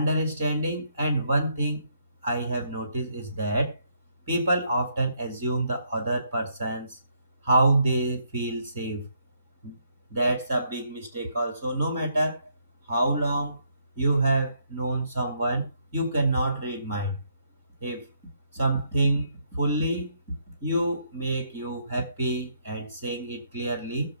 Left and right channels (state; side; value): inverted; both; correlation -0.73